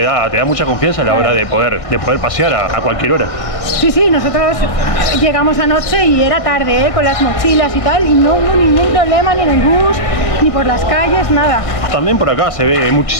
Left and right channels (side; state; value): right; late; 1.6 ms